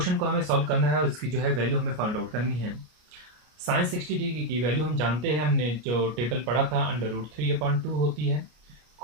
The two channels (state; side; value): late; left; 33 ms